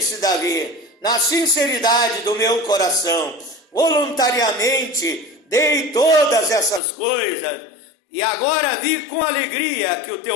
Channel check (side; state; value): right; drops out; at 6.8 s